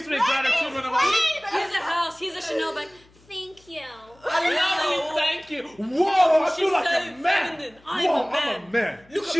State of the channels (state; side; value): noise; left; hum, 29 dB below the sound